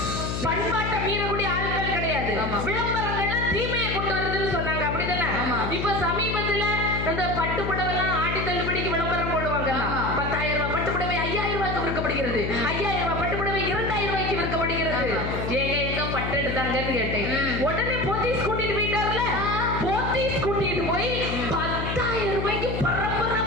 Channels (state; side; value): noise; left; hum, 3 dB below the sound